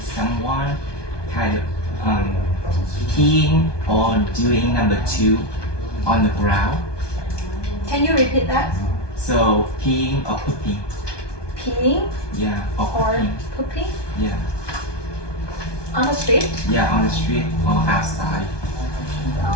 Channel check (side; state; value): right; late; 1.2 ms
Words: someone kind of peeing or doing number 2 on the ground. Can you repeat that? So peeing or pooping. Peeing Yeah, or or pooping. pooping Yeah, on the street? yeah, on the street or outside.